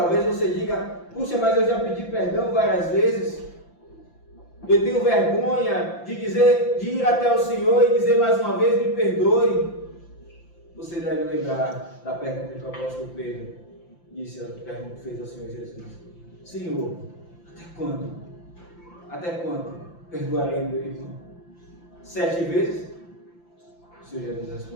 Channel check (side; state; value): right; late; 5.8 ms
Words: você diga: puxa, mas eu já pedi perdão várias vezes. Eu tenho vergonha de ir até o Senhor e dizer mais uma vez: me perdoe. Você deve lembrar da pergunta que o apóstolo Pedro fez ao Senhor Jesus: Senhor, até quando? Até quando perdoarei meu irmão? 7 vezes? O Senhor Jesus